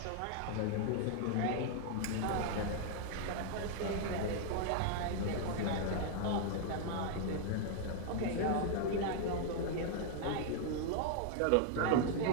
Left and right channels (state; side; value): different; both; correlation 0.00